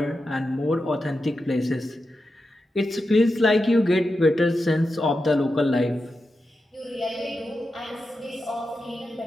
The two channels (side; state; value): both; normal; correlation 0.89